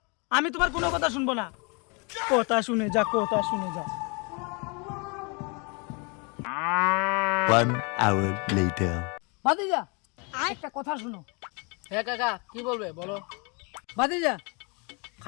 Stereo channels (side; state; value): right; quieter; 32.2 dB